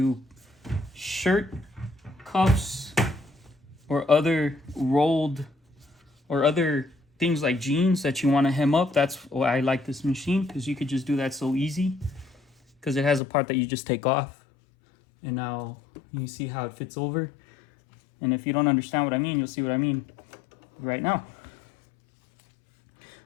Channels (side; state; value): right; drops out; at 13.2 s